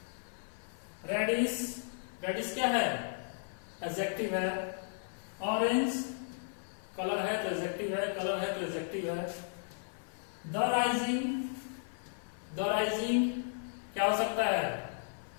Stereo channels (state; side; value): silent; right; 54 dB below the other